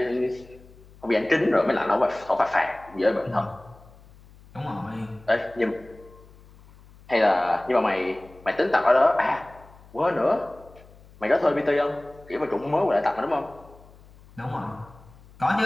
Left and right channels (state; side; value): noise; left; hum, 24 dB below the sound